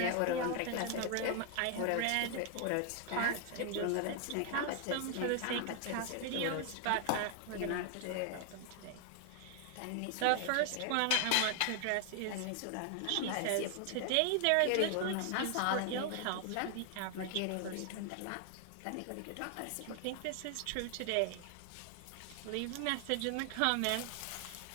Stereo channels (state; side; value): different; both; correlation 0.00